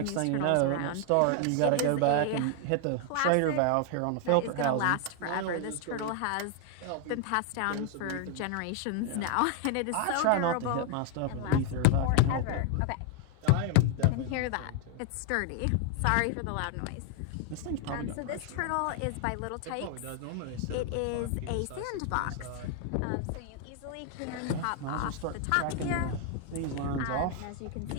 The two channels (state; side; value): different; both; correlation 0.00